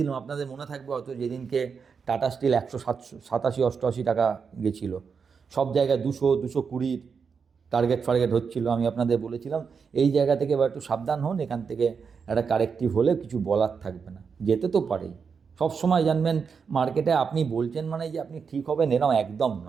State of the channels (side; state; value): left; quieter; 5.9 dB